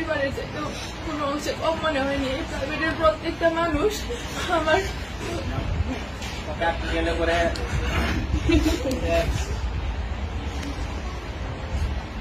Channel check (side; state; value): both; identical; correlation 1.00